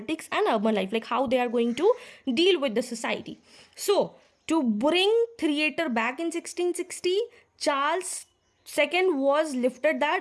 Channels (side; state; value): both; identical; correlation 1.00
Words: and urban life, like how they are going to deal with the society. So to bring theatre back in 1660, Charles II was lifted